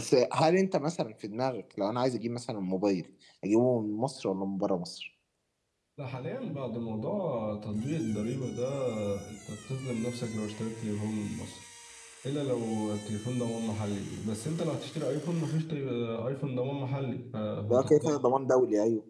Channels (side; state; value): both; identical; correlation 1.00